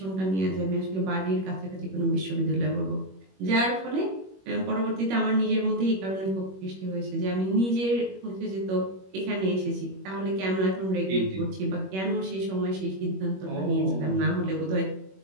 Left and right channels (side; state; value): left; late; 21 ms